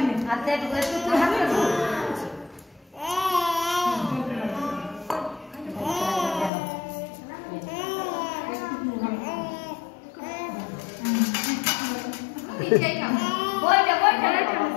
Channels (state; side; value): drops out; right; at 6.5 s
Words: নে হাতে একটু হাতে পিছাই খাও